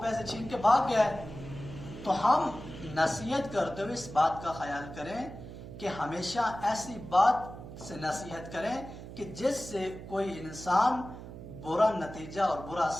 پیسے چھین کے بھاگ گیا ہے۔ تو ہم نصیحت کرتے ہوئے اس بات کا خیال کریں کہ ہمیشہ ایسی بات سے نصیحت کریں کہ جس سے کوئی انسان برا نتیجہ اور برا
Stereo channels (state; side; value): noise; right; hum, 12 dB below the sound